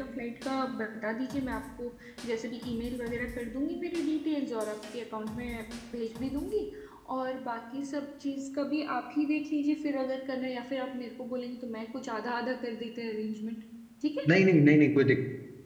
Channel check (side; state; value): both; identical; correlation 1.00